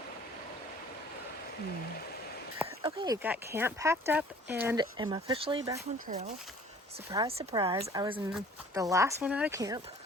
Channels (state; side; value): normal; both; correlation 0.51